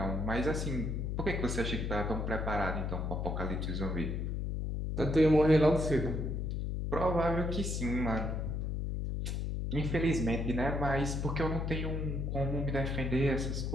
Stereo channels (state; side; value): noise; left; hum, 1 dB below the sound